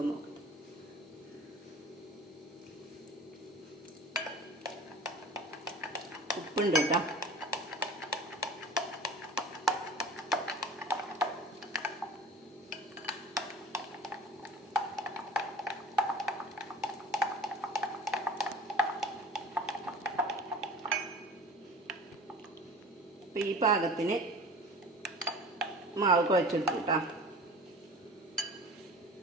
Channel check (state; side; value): normal; both; correlation 0.41